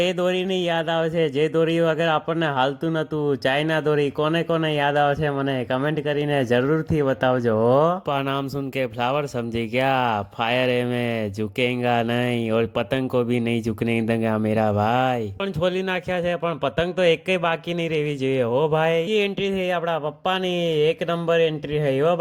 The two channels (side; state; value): both; identical; correlation 1.00